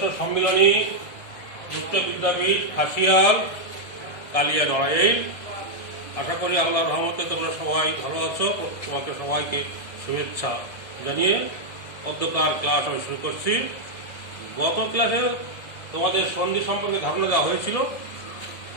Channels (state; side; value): late; right; 1.6 ms